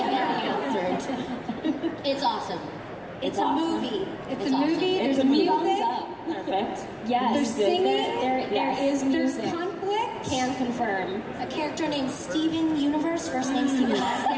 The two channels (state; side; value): identical; both; correlation 1.00